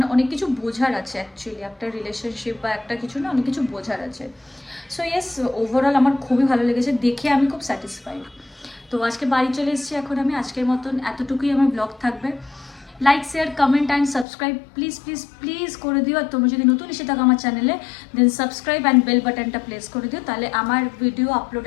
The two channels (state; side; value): drops out; right; at 14.2 s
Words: অনেক কিছু বোঝার আছে অ্যাকচুয়ালি, একটা রিলেশনশিপ বা একটা কিছু না, অনেক কিছু বোঝার আছে। সো ইয়েস, ওভারঅল আমার খুবই ভালো লেগেছে, দেখে আমি খুব স্যাটিসফাইড। তো আজকে বাড়ি চলে এসেছি, এখন আমি আজকের মতন এতটুকুই আমার ব্লগ থাকবে। Like, share, comment and subscribe please please please করে দিও। আর তোমরা যদি নতুন এসে থাকো আমার চ্যানেলে, দেন সাবস্ক্রাইব অ্যান্ড বেল বাটনটা প্রেস করে দিও, তাহলে আমার ভিডিও